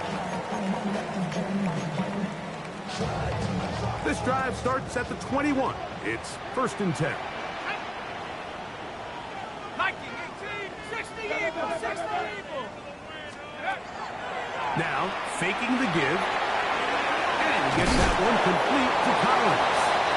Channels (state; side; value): identical; both; correlation 1.00